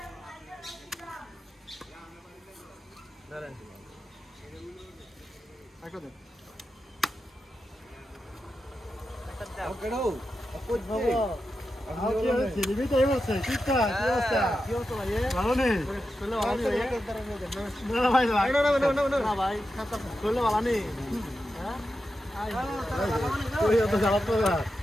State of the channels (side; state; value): both; normal; correlation 0.89